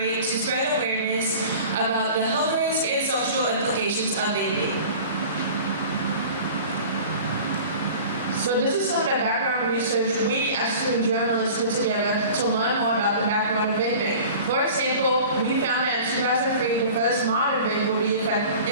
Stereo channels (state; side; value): inverted; both; correlation -0.41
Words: to spread awareness about the health risks and social implications of vaping? So this is some of the background research we as student journalists put together to learn more about the background of vaping. For example, we found that in 2003, the first modern vape would be